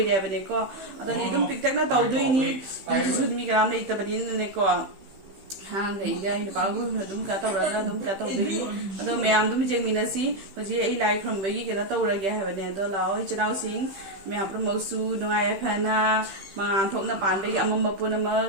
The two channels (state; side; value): late; left; 15 ms